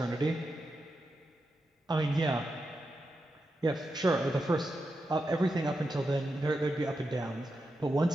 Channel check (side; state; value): both; normal; correlation 0.87